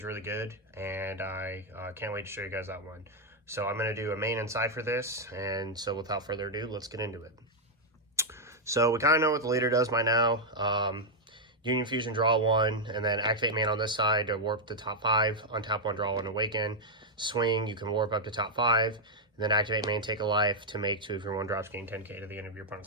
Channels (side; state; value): both; normal; correlation -0.02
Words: really good, and I can't wait to show you guys that one. So I'm going to do a main and side for this, and so without further ado, let's get into it. So we kind of know what the leader does by now. Union Fusion, draw one, and then activate main on this side to warp the top 5, untap one, draw one, awaken. Swing, you can warp up to top 5, and then activate main, take a life to make 2 of your 1-drops, gain 10k to the end of your